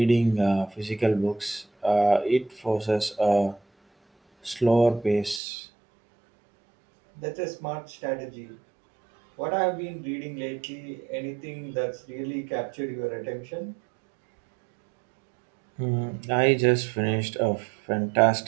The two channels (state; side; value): drops out; left; at 5.4 s